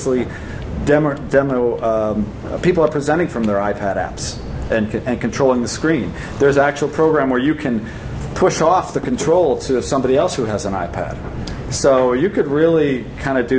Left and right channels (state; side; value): identical; both; correlation 1.00